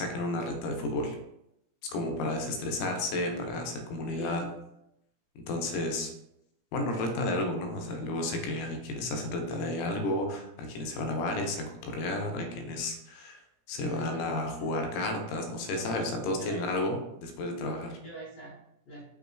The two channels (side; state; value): right; late; 17 ms